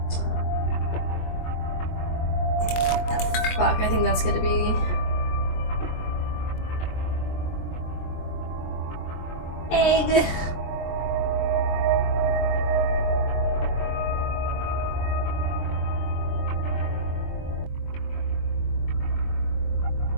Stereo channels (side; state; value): right; late; 23 ms